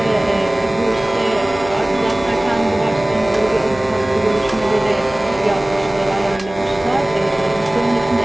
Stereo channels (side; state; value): right; noise; hum, 17 dB below the sound